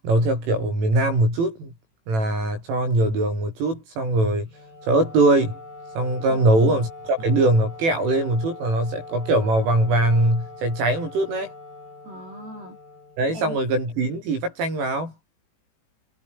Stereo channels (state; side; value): late; left; 18 ms